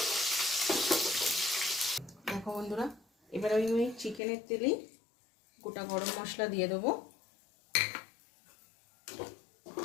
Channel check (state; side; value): drops out; right; at 4.2 s